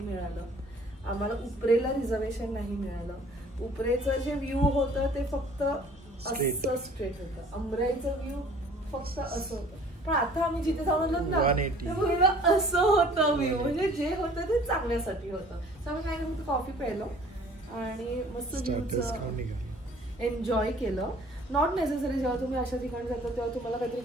आम्हाला उपरेला रिझर्वेशन नाही मिळालं. उपरेचं जे व्ह्यू होतं ते फक्त असं स्ट्रेट होतं, अंबराईचं व्ह्यू फक्त असं होतं. पण आता आम्ही जिथे जाऊन ना असं होतं व्ह्यू, म्हणजे जे होतं ते चांगल्यासाठी होतं. तर आम्ही काय करतो, कॉफी प्यायलो आणि मस्त व्ह्यूचं एन्जॉय केलं. नॉट नेसेसरी जेव्हा तुम्ही अशा ठिकाणी जाता तेव्हा तुम्हाला काहीतरी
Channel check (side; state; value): both; normal; correlation 0.52